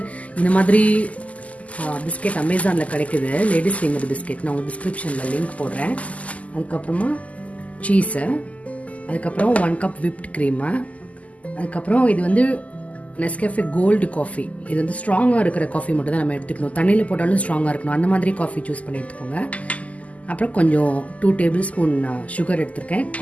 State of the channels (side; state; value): right; late; 0.071 ms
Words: இந்த மாதிரி பிஸ்கெட் அமேசானில் கிடைக்குது. Ladies finger biscuit. நான் உங்களுக்கு டிஸ்கிரிப்ஷனில் லிங்க் போடுறேன். அதுக்கப்புறமா சீஸு, அதுக்கப்புறம் 1 கப் விப்ட் க்ரீமு, அதுக்கப்புறம் இது வந்து நெஸ்கேஃபே கோல்டு காஃபி. இது வந்து ஸ்ட்ராங்காக இருக்கிற காஃபி மட்டும் தான் நம்ம எடுத்துக்கணும். தண்ணியில் போட்டாலும் ஸ்ட்ராங்காக இருக்கணும். அந்த மாதிரி காஃபி சூஸ் பண்ணி எடுத்துக்கோங்க. அப்புறம் கொஞ்சம் 2 டேபிள் ஸ்பூன் சுகர் எடுத்துருக்கேன்.